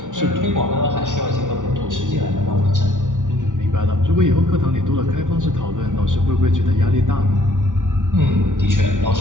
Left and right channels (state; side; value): late; left; 0.87 ms